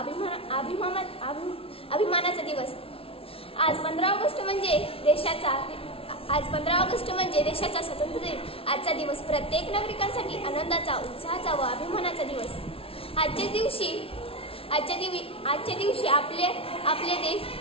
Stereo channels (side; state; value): right; late; 0.27 ms